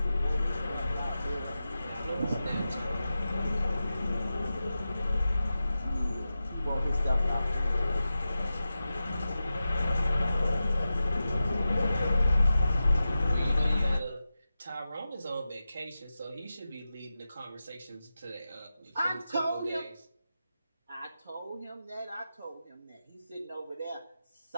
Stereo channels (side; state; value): both; inverted; correlation -0.92